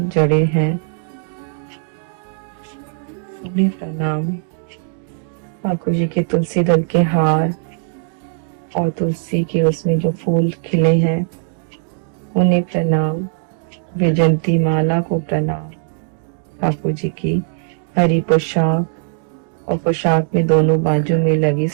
जड़े हैं उन्हें प्रणाम। ठाकुर जी के तुलसी दल के हार और तुलसी के उसमें जो फूल खिले हैं उन्हें प्रणाम। वैजंती माला को प्रणाम। ठाकुर जी की हरी पोशाक और पोशाक में दोनों बाजू में लगी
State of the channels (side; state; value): left; silent; 58 dB below the other